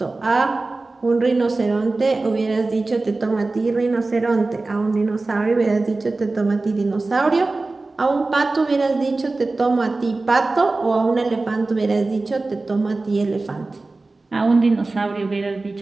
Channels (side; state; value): left; quieter; 3.4 dB